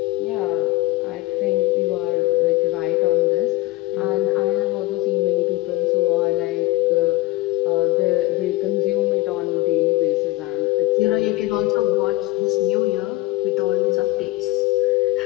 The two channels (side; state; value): right; quieter; 20.1 dB